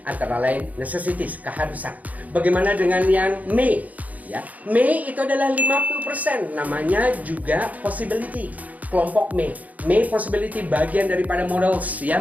antara lain necessities, keharusan. Bagaimana dengan yang may? Ya, may itu adalah 50%, namanya juga possibility. Kelompok may. May possibility bagian daripada models ya,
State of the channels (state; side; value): late; left; 0.076 ms